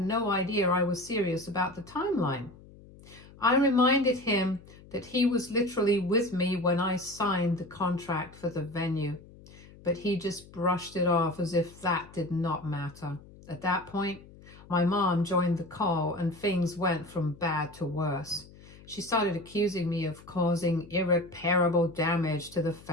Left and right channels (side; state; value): left; noise; hum, 21 dB below the sound